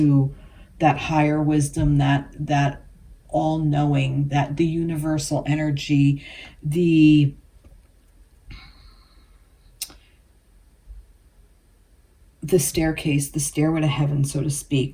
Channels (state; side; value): identical; both; correlation 1.00